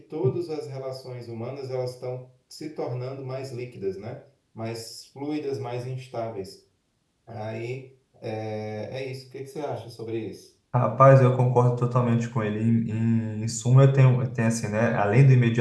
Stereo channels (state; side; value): identical; both; correlation 1.00